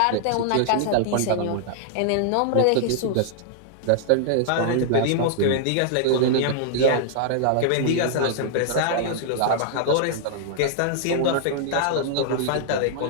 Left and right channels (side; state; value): both; different; correlation -0.01